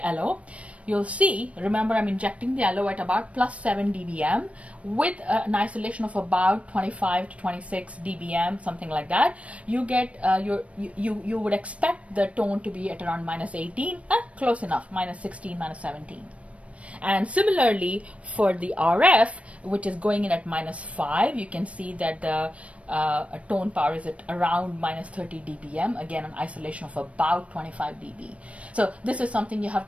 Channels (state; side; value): late; left; 0.063 ms